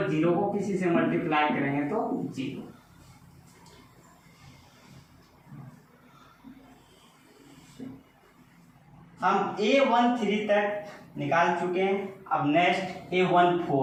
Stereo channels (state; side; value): identical; both; correlation 1.00